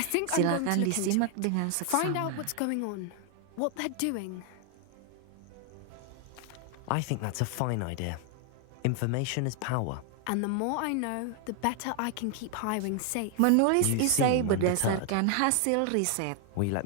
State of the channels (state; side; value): different; both; correlation 0.00